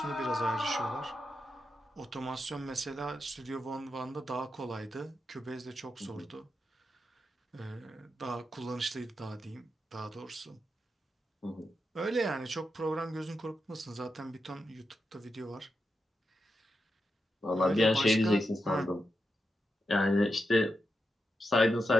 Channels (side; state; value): both; normal; correlation 0.86